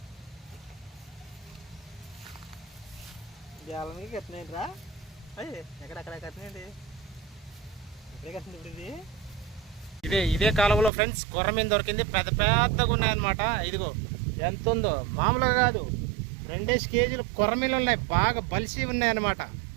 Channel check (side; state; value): left; drops out; at 10.9 s